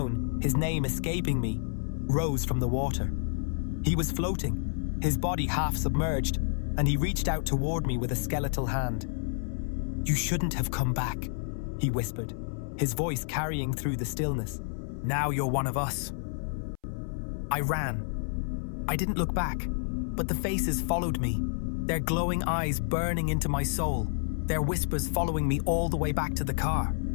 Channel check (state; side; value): silent; right; 58 dB below the other